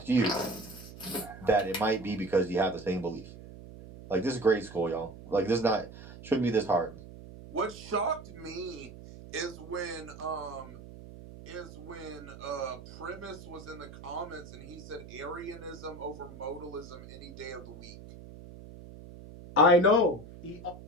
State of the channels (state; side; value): noise; right; hum, 15 dB below the sound